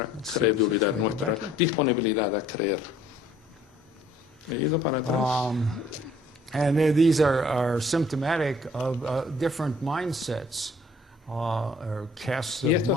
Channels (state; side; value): normal; both; correlation 0.58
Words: credulidad, nuestra disponibilidad a creer. He ido para atrás. And these are symptomatic of different mindsets. Y